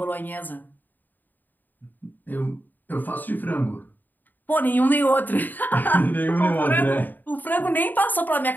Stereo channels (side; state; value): right; late; 0.088 ms